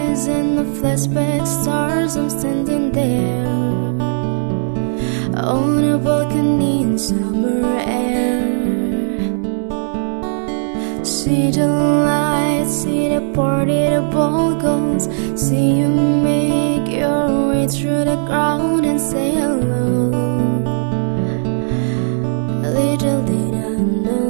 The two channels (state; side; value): silent; left; digital silence